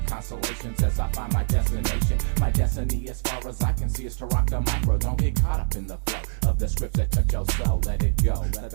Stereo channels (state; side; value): silent; left; digital silence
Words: constellations as I find my destination. My destiny as far as I can see is to rock the micro. Don't get caught up in the flow of the scripts that touch your soul. Let it go, let